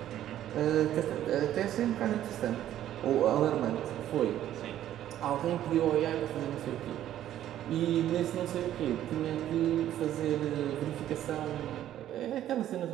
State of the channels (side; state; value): left; quieter; 12.0 dB